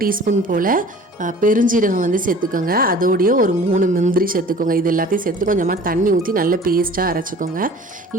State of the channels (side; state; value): both; normal; correlation 0.46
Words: டீஸ்பூன் போல் பெருஞ்சீரகம் சேர்த்துக்கோங்க. அதோடைய ஒரு 3 முந்திரி சேர்த்துக்கோங்க. இது எல்லாத்தையும் சேர்த்து கொஞ்சமாக தண்ணி ஊற்றி நல்ல பேஸ்ட்டாக அரைச்சிக்கோங்க.